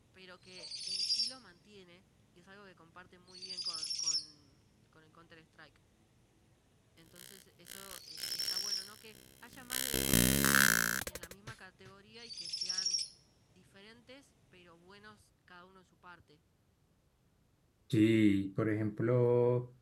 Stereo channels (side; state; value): both; identical; correlation 1.00